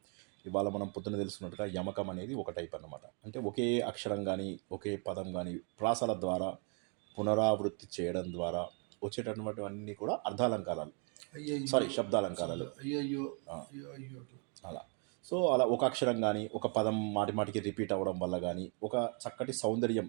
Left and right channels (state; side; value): quieter; left; 37.6 dB